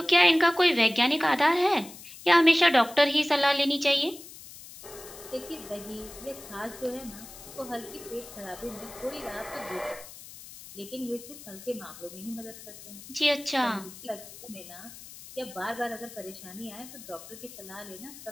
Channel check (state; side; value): noise; left; hiss, 16 dB below the sound